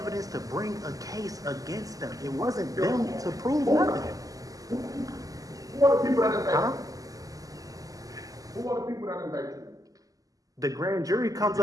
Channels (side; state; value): left; late; 0.17 ms